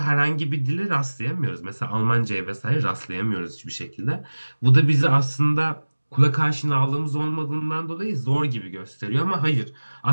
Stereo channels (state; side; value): inverted; both; correlation -1.00